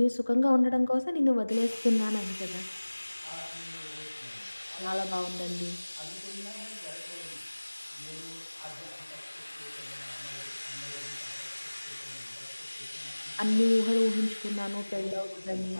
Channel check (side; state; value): both; inverted; correlation -1.00